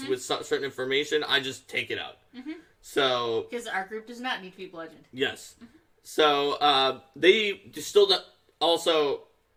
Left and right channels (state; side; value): identical; both; correlation 1.00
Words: with certain information, I just take it out. So, because our group does not need to be bludgeoned. Yes. So they still also,